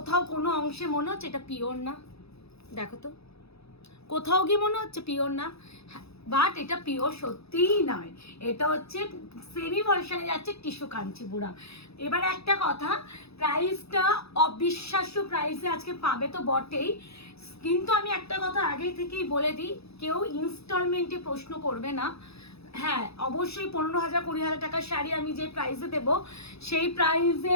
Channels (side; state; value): right; late; 0.78 ms